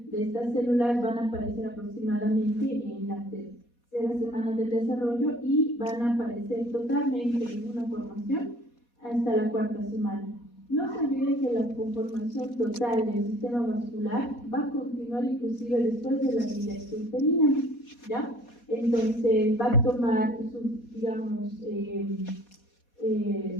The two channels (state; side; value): late; right; 4.2 ms